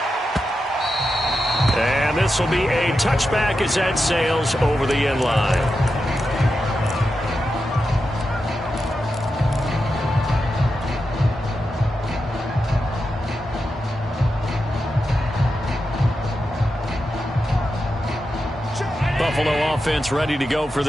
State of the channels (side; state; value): both; normal; correlation 0.89